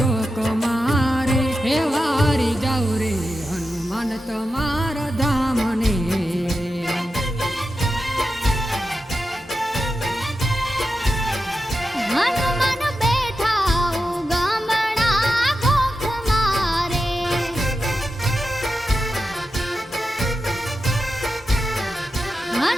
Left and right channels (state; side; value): normal; both; correlation 0.90